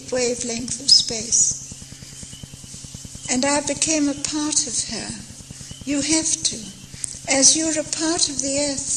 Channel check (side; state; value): both; identical; correlation 1.00